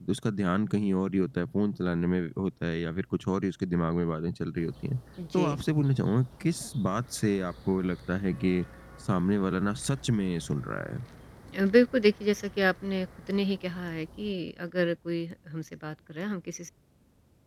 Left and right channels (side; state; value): both; identical; correlation 1.00